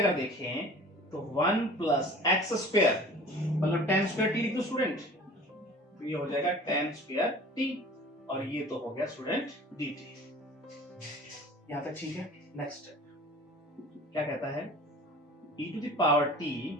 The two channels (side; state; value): both; normal; correlation 0.44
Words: देखें तो 1 प्लस एक्स स्क्वायर मतलब tan स्क्वायर t लिख दो स्टूडेंट, तो ये हो जाएगा tan स्क्वायर t, और ये तो हो गया स्टूडेंट dt। यहां तक ठीक है। नेक्स्ट क्या कहता है, e to the power t,